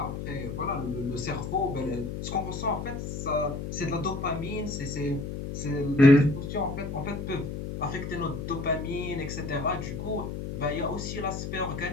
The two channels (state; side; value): noise; left; hum, 5 dB below the sound